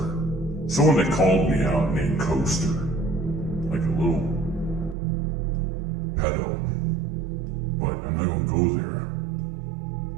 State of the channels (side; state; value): left; drops out; at 5.0 s